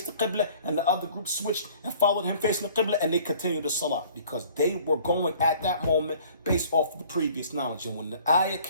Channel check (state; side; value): inverted; both; correlation -0.53